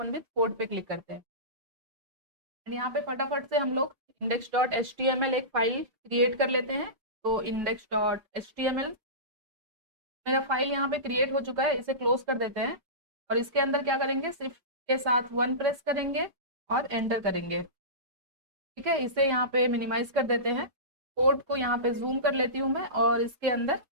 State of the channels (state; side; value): late; left; 5.1 ms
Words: विथ कोड पे क्लिक करते हैं। यहाँ पे फटाफट से हम लोग index.html एक फाइल क्रिएट कर लेते हैं। तो index.html मेरा फाइल यहाँ पे क्रिएट हो चुका है, इसे क्लोज कर देते हैं। और इसके अंदर क्या करेंगे, शिफ्ट के साथ 1 प्रेस करेंगे और एंटर करेंगे। ठीक है, इसे यहाँ पे मिनिमाइज कर देते हैं। कोड को यहाँ पे जूम कर लेती हूँ मैं, और इसके अंदर